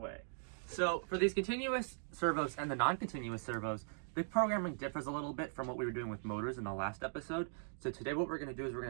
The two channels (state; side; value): silent; left; digital silence